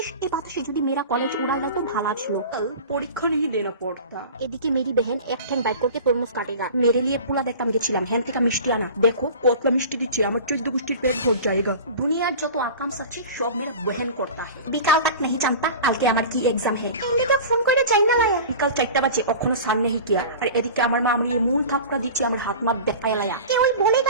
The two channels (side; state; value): both; inverted; correlation -0.36